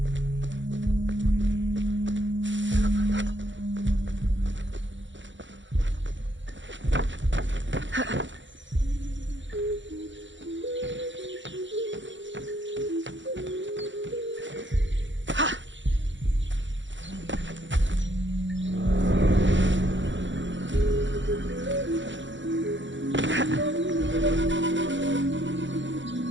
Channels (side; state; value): left; late; 0.54 ms